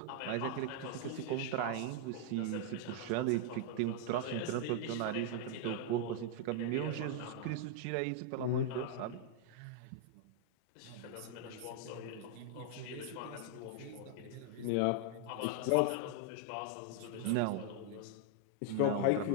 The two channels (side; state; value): both; different; correlation 0.00